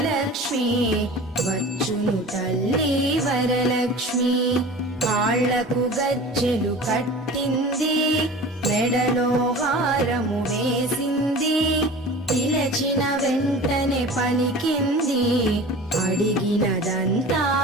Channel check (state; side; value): normal; both; correlation 0.38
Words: వచ్చును తల్లి వరలక్ష్మి. కాళ్లకు గజ్జెలు కట్టింది, మెడలో హారము వేసింది, పిలచిన వెంటనే పలికింది, అడిగినదంతా